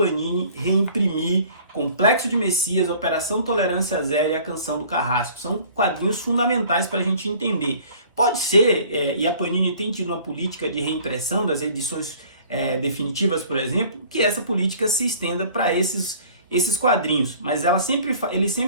reimprimir Complexo de Messias, Operação Tolerância Zero e A Canção do Carrasco. São quadrinhos fundamentais para a gente entender. Pode ser, e a Panini tem tido uma política de reimpressão das edições definitivas, por exemplo, que essa política se estenda para esses quadrinhos. Mas eles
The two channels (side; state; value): both; inverted; correlation -0.51